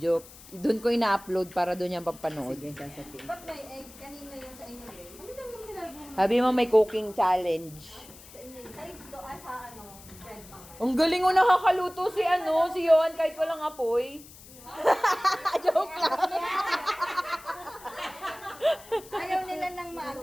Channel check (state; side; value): noise; left; hiss, 19 dB below the sound